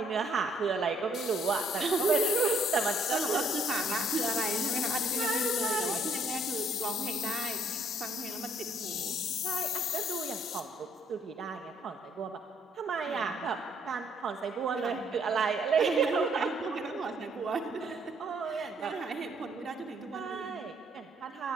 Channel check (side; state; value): both; normal; correlation 0.65